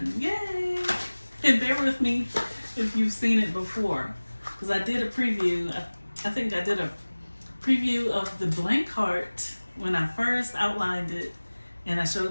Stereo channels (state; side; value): inverted; both; correlation -1.00